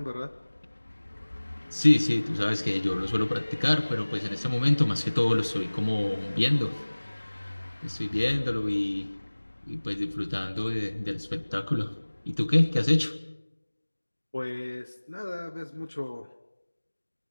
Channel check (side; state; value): both; inverted; correlation -1.00